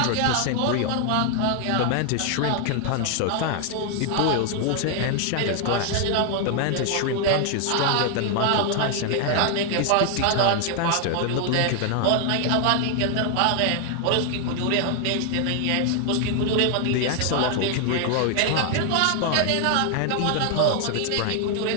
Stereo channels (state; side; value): different; both; correlation 0.00